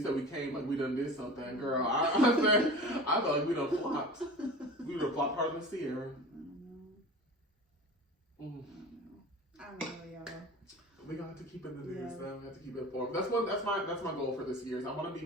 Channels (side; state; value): both; normal; correlation 0.36